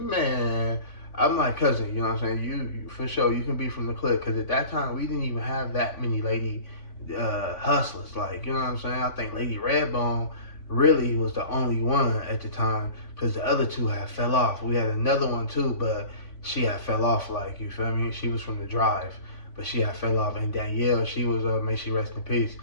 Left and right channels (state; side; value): late; right; 3.5 ms